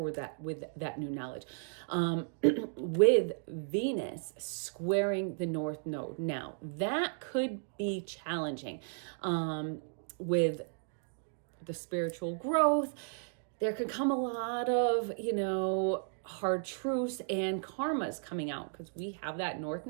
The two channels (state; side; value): silent; left; digital silence